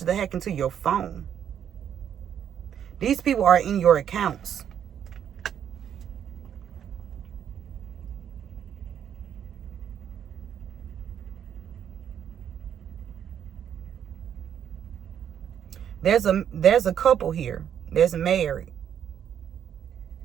that hack into your phone. These people are in your accounts. There's a couple here that's married,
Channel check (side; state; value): left; quieter; 9.1 dB